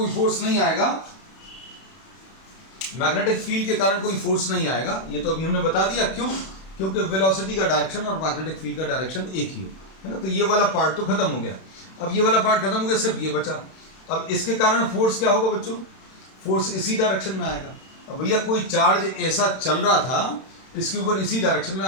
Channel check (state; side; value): late; right; 31 ms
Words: फोर्स नहीं आएगा। मैग्नेटिक फील्ड के कारण कोई फोर्स नहीं आएगा, ये तो अभी हमने बता दिया। क्यों? क्योंकि वेलोसिटी का डायरेक्शन और मैग्नेटिक फील्ड का डायरेक्शन एक ही है ना। तो ये वाला पार्ट तो खत्म हो गया। अब ये वाला पार्ट खत्म हो गया, सिर्फ ये बचा। अब इसके कारण फोर्स क्या होगा बच्चों? फोर्स इसी डायरेक्शन में आएगा। अब भैया कोई चार्ज ऐसा चल रहा था, इसके ऊपर इसी डायरेक्शन में